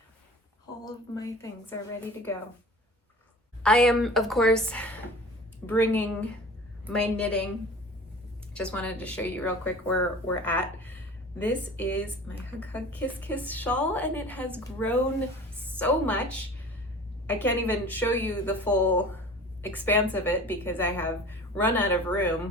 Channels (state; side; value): normal; both; correlation 0.41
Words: All of my things are ready to go. I am, of course, bringing my knitting. Just wanted to show you real quick where we're at. This is my Hug Hug Kiss Kiss shawl and it has grown so much. I can't even show you the full expanse of it because I have run out of